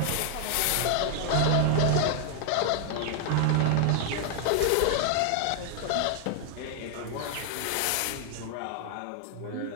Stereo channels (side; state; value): both; different; correlation 0.00